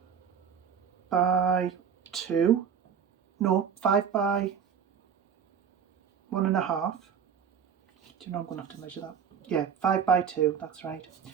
by 2. No, 5 by 1.5. Do you know I'm going to have to measure that? Yeah, 5 by 2, that's right.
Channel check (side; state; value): left; quieter; 7.6 dB